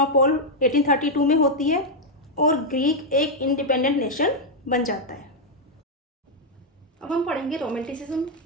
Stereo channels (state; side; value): normal; both; correlation -0.01